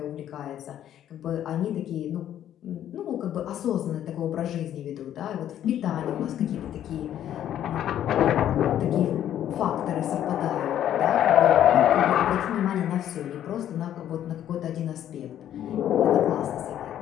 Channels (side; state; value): right; quieter; 11.0 dB